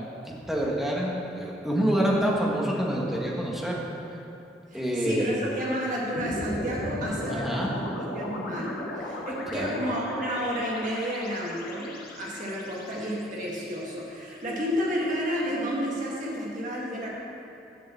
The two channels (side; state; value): both; normal; correlation 0.63